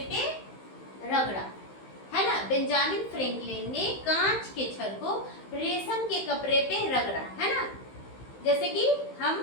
पे रगड़ा, है ना। बेंजामिन फ्रैंकलिन ने कांच के छड़ को रेशम के कपड़े पे रगड़ा, है ना। जैसे कि हम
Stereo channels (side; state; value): right; late; 15 ms